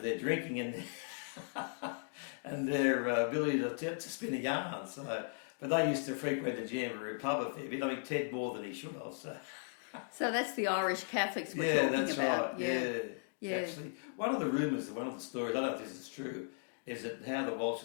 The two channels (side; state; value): right; silent; digital silence